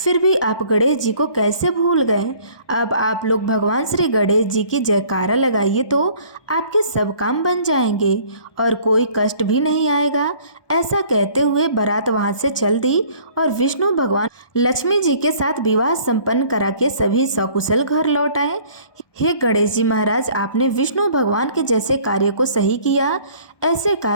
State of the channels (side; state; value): right; late; 1.2 ms